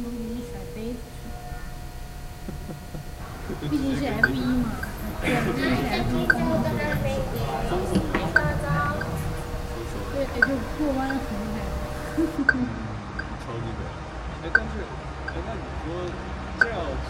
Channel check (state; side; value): identical; both; correlation 1.00